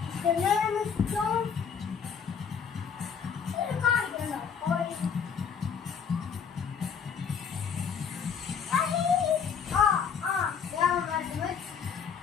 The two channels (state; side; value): quieter; right; 6.8 dB